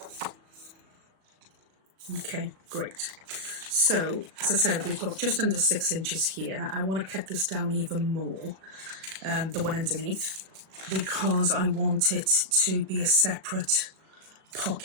Okay, great. So, as I said, we've got just under 6 inches here. I want to cut this down even more, the one underneath, because I want it to be a separate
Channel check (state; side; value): late; left; 37 ms